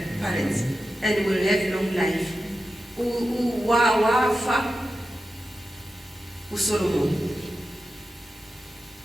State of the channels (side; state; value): both; normal; correlation 0.91